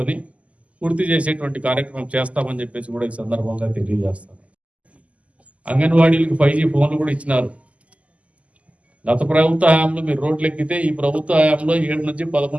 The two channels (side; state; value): left; late; 0.066 ms